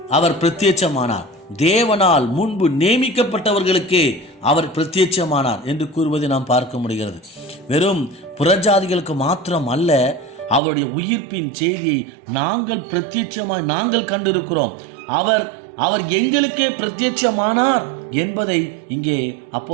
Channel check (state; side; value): drops out; left; at 10.6 s